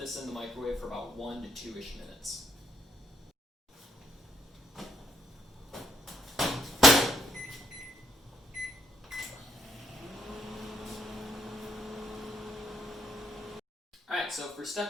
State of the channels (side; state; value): both; normal; correlation 0.73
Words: in the microwave for about 1 to 2-ish minutes. Alright, so for